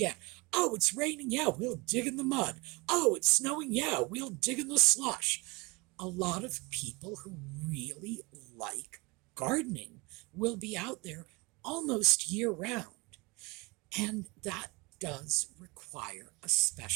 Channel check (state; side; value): quieter; left; 26.1 dB